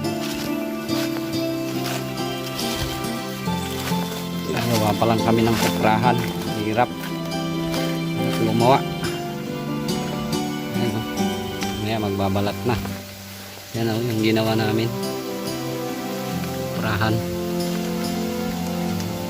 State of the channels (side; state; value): both; identical; correlation 1.00